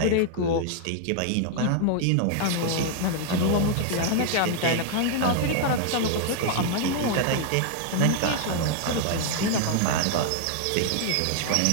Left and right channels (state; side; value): different; both; correlation 0.00